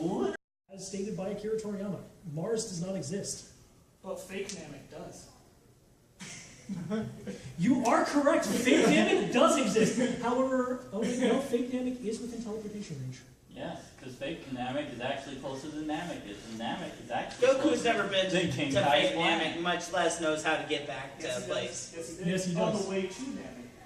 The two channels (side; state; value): both; identical; correlation 1.00